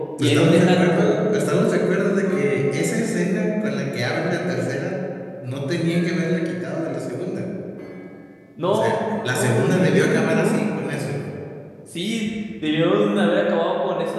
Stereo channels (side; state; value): both; identical; correlation 1.00